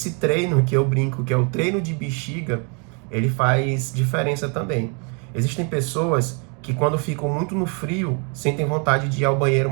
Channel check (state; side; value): quieter; left; 36.3 dB